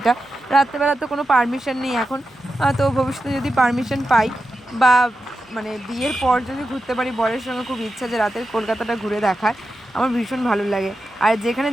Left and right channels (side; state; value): both; normal; correlation 0.90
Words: রাত্রেবেলা তো কোনো পারমিশন নেই এখন, তো ভবিষ্যতে যদি পারমিশন পাই বা মানে বিয়ের পর যদি ঘুরতে পারি, বরের সঙ্গে খুব ইচ্ছা যে রাতের কলকাতাটা ঘুরে দেখার, আমার ভীষণ ভালো লাগে। আর যেখানে